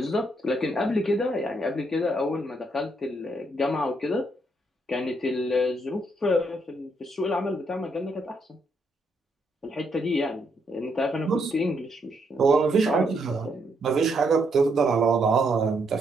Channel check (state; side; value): normal; both; correlation 0.75